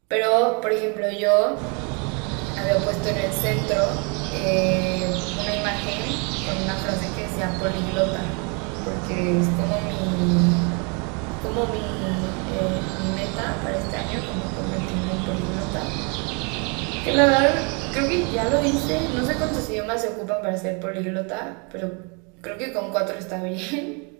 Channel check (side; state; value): left; quieter; 33.9 dB